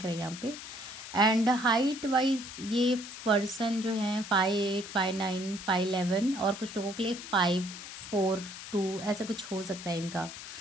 रहा है यहाँ पे। एंड हाइट वाइज ये पर्सन जो है 5'8", 5'9", 5'11", और कुछ लोगों के लिए 5'4", 2" ऐसा कुछ हो सकता है इनका।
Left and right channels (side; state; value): left; noise; hiss, 11 dB below the sound